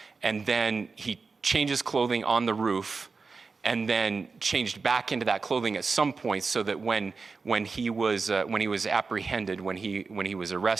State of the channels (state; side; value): quieter; left; 4.5 dB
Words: and then he changes clothing on the roof, and then changed back into that clothing at some point, so that when he was apprehended, when he was